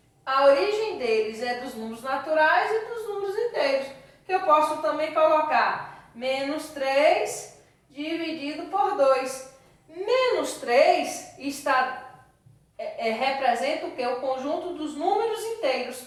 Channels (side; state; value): both; identical; correlation 1.00